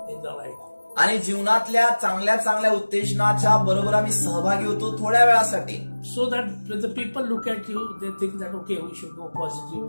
in the life. आणि जीवनातल्या चांगल्या चांगल्या उत्तेजनाच्या बरोबर आम्ही सहभागी होतो थोड्या वेळासाठी. So that when the people look at you, they think that okay, we should go positive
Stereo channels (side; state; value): both; inverted; correlation -1.00